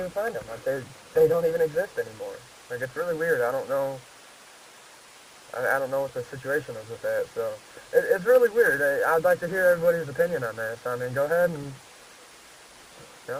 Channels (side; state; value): both; identical; correlation 1.00